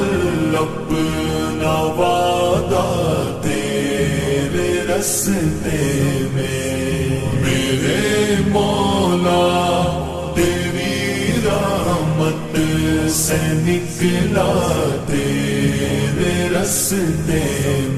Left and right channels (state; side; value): identical; both; correlation 1.00